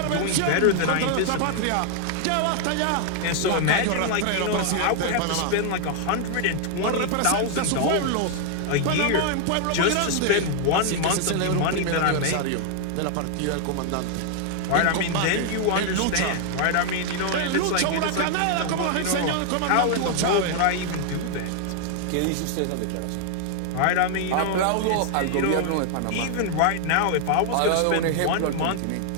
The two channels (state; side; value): different; both; correlation 0.00